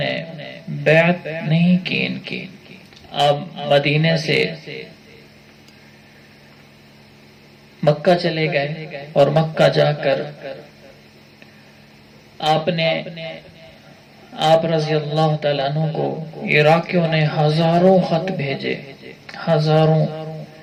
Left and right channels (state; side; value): identical; both; correlation 1.00